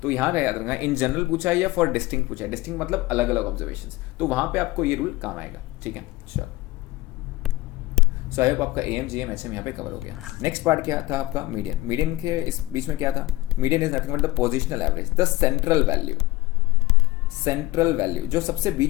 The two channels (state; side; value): quieter; right; 18.5 dB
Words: तो यहाँ याद रखना, इन जनरल पूछा है या फॉर डिस्टिंक्ट पूछा है। डिस्टिंक्ट मतलब अलग अलग ऑब्जर्वेशन, तो वहाँ पे आपको ये रूल काम आएगा, ठीक है। चलो, सो आई होप आपका am gm hm यहाँ पे कवर हो गया। नेक्स्ट पार्ट क्या था आपका, मीडियन। मीडियन के इस बीच में क्या था, median is nothing but the positional average, the central value जो सबसे